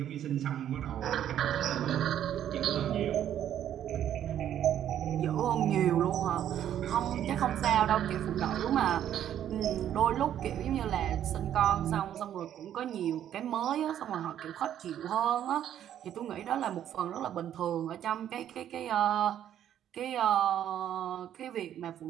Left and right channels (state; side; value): quieter; left; 10.6 dB